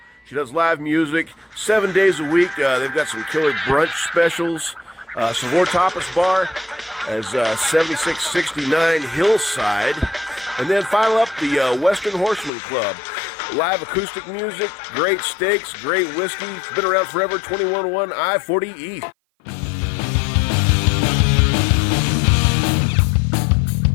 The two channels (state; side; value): drops out; right; at 12.5 s